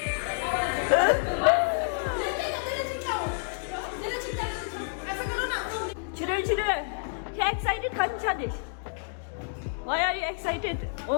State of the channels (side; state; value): right; silent; digital silence